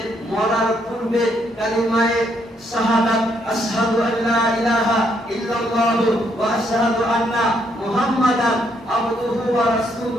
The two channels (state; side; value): normal; both; correlation 0.73